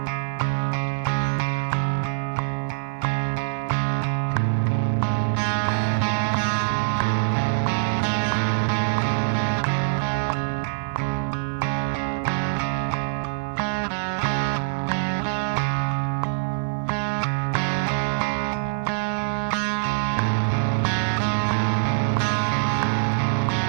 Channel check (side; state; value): left; silent; 58 dB below the other